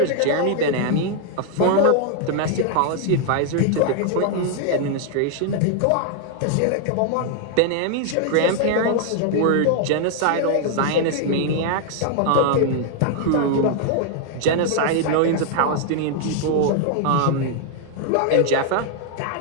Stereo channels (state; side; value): different; both; correlation 0.00